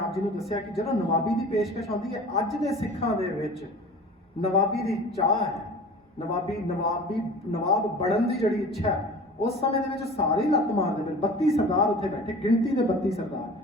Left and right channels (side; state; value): both; normal; correlation 0.40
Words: ਜੀ ਨੂੰ ਦੱਸਿਆ ਕਿ ਜਦੋਂ ਨਵਾਬੀ ਦੀ ਪੇਸ਼ਕਸ਼ ਆਉਂਦੀ ਹੈ, ਅੱਜ ਦੇ ਸਿੱਖਾਂ ਦੇ ਵਿੱਚ ਨਵਾਬੀ ਦੀ ਚਾਹ ਹੈ, ਨਵਾਬ ਬਣਨ ਦੀ ਜਿਹੜੀ ਇੱਛਾ ਹੈ, ਉਸ ਸਮੇਂ ਦੇ ਵਿੱਚ ਸਾਰੇ ਲੱਤ ਮਾਰਦੇ ਪਏ। 32 ਸਰਦਾਰ ਉੱਥੇ ਬੈਠੇ, ਗਿਣਤੀ ਦੇ 32